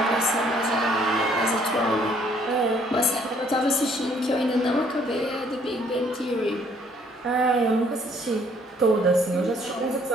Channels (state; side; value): normal; both; correlation 0.63